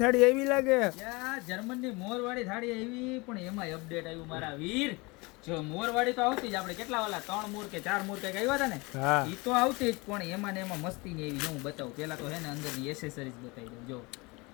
થાળી એવી લાગે. જર્મન ની મોરવાડી થાળી એવી, પણ એમાં અપડેટ આવ્યું મારા વીર. જો મોરવાડી તો આવતી જ, આપણે કેટલા વાલા 3 મોર કે 4 મોર કઈક આવ્યા હતા ને, ઈ તો આવતી જ, પણ એમાં ને એમાં મસ્તી ની એવી. હું બતાવું પેલા તો હે ને અંદર ની એસેસરીઝ બતાવી દઉં. જો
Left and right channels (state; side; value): quieter; right; 25.8 dB